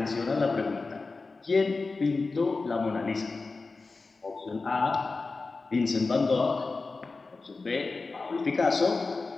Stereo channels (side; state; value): right; quieter; 3.9 dB